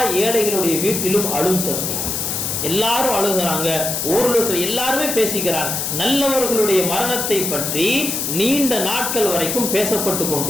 ஏழைகளுடைய வீட்டிலும் அழும் சத்தம். எல்லாரும் அழுகிறாங்க. ஊரில் இருக்கிற எல்லாருமே பேசிக்கிறாங்க. நல்லவர்களுடைய மரணத்தை பற்றி நீண்ட நாட்கள் வரைக்கும் பேசப்பட்டு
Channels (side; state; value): left; noise; hiss, 2 dB below the sound